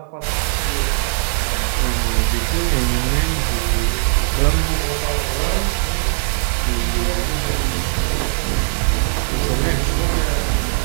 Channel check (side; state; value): left; silent; 60 dB below the other